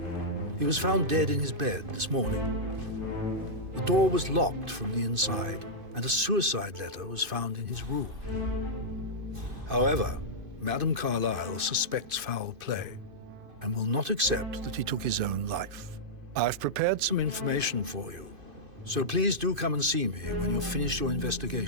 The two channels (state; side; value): late; left; 2.5 ms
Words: He was found dead in his bed this morning. The door was locked from the inside, and a suicide letter was found in his room. However, Madame Carlyle suspects foul play and will not accept that he took his own life. I've prepared some information for you, so please do come and see me when you've finished your